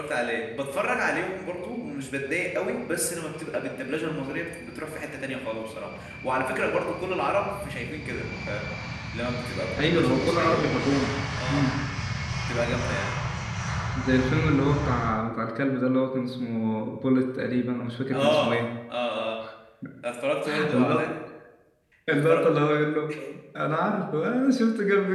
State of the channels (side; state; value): both; identical; correlation 1.00